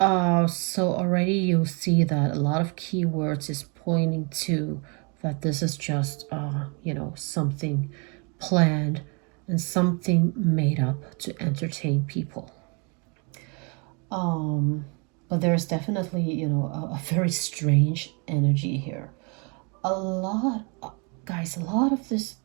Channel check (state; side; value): quieter; left; 33.5 dB